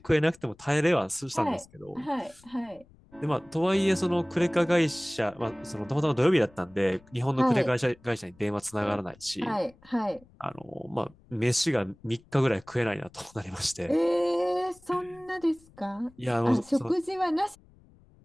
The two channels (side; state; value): left; noise; rumble, 27 dB below the sound